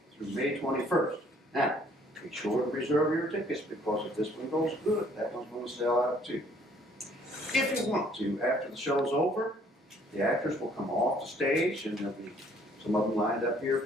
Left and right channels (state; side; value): normal; both; correlation 0.61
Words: through May 21st. Now, be sure to reserve your tickets, because if this one goes good, that one's going to sell out too. If you want to, after the show's over, the actors will come off the stage, and there'll be some of them lined up here